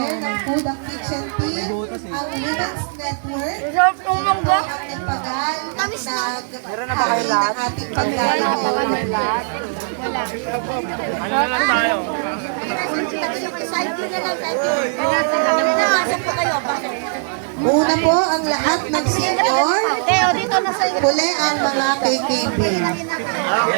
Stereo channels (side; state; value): left; silent; digital silence